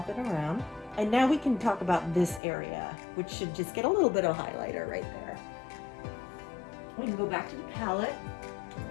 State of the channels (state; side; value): drops out; right; at 2.4 s